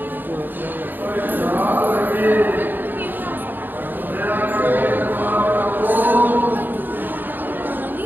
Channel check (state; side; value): late; left; 0.090 ms